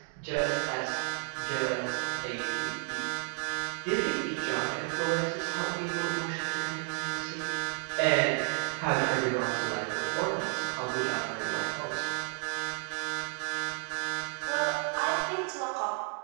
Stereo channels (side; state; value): left; quieter; 39.6 dB